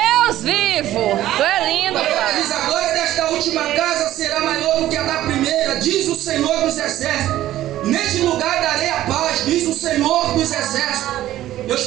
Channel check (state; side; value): quieter; left; 13.9 dB